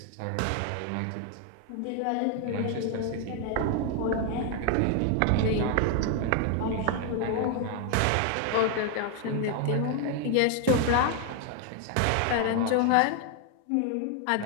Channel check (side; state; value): both; different; correlation 0.00